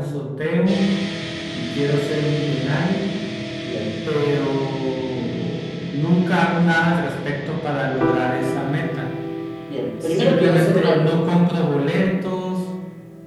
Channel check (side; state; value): both; identical; correlation 1.00